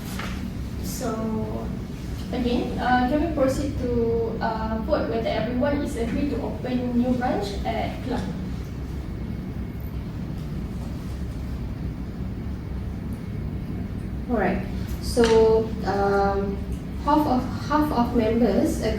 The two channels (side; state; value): both; identical; correlation 1.00